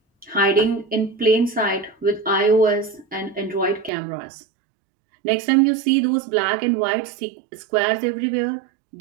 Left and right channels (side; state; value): left; drops out; at 3.9 s